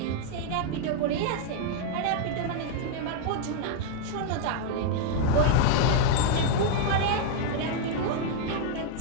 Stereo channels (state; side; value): different; both; correlation 0.00